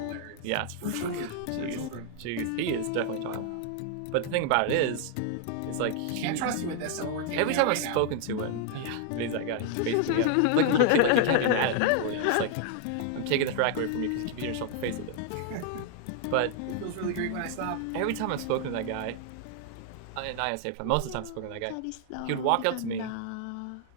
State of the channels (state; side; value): different; both; correlation 0.00